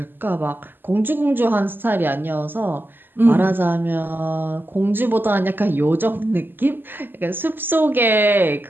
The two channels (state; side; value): late; left; 0.095 ms